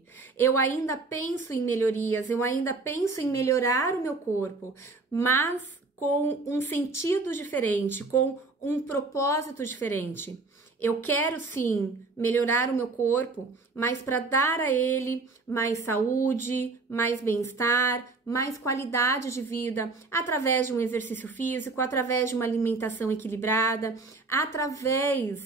Eu ainda penso em melhorias, eu ainda penso em melhorar o meu corpo, mas com um sentido diferente, com um propósito diferente. Eu quero sim melhorar o meu corpo, mas para dar a ele mais saúde, mais bem-estar, mais qualidade de vida, através de um exercício físico, através de uma alimentação equilibrada,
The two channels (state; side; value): quieter; left; 3.7 dB